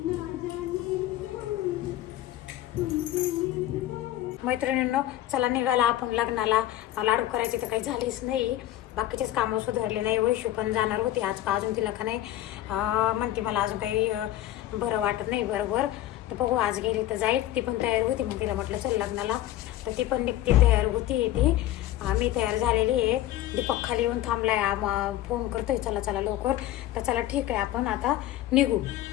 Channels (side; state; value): right; quieter; 13.8 dB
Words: मैत्रिणींनो, चला निघाला आपण लग्नाला. लाडू करायचे तर काही झालीच नाही, बाकीचेच कामं सुधारले नाही. वैशू पण जाणार होती आज, का अजून तिला का नाही म्हणते मला अजून काही बरं वाटत नाही बरोबर. तर बघू, आज गेली तर जाईल. ती पण तयार होती, मग तिला म्हटलं चल लग्नाला. तर ती पण निघते, तयार होती ती. मी तयार झालेली आहे. दीपक खाली येऊन थांबलाय, फोन करतोय चला चला लवकर. तर चला ठीक आहे, आपण आता निघू.